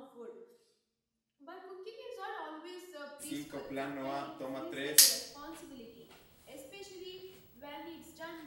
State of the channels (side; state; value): both; identical; correlation 1.00